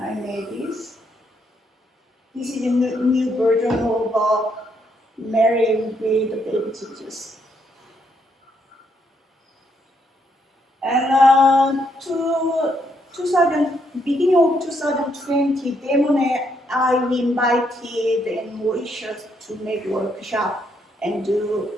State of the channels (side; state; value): both; normal; correlation 0.75